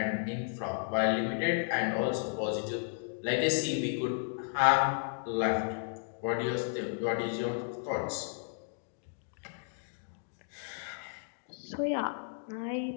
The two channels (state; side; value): silent; right; digital silence